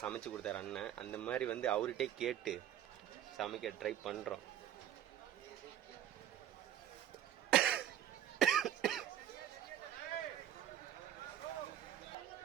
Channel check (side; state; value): left; quieter; 11.0 dB